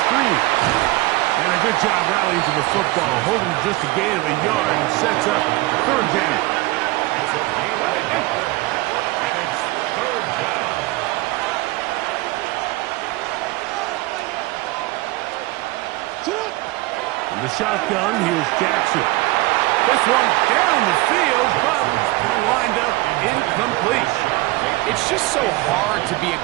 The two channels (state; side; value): quieter; left; 20.6 dB